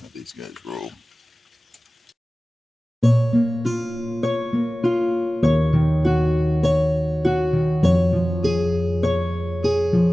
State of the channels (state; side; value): normal; both; correlation 0.97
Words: how these guys roll.